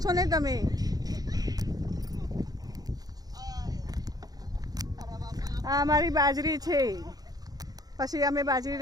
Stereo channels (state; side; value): late; left; 0.19 ms